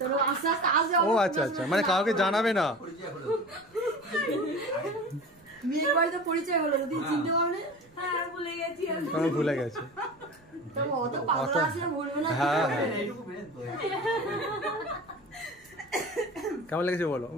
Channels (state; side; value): noise; right; rumble, 30 dB below the sound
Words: আস্তে আস্তে ও আচ্ছা, মানে কাউকে জানাবে না। মেয়ের বাড়িতে পরিচয় হলো, যদি চিনতে পারলে। হ্যাঁ ভুলে গেছি আমি। ভুলে গেছে। তবে অত পাগল আছে বলবো না। হ্যাঁ কেমন লেগেছে বলো?